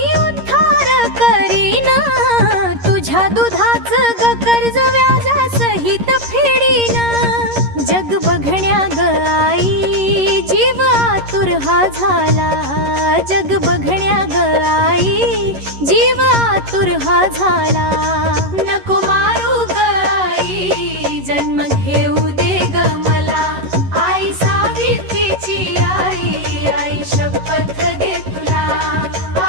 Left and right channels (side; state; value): left; late; 11 ms